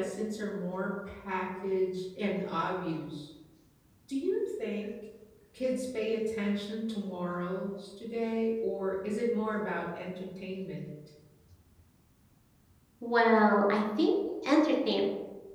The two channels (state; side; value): identical; both; correlation 1.00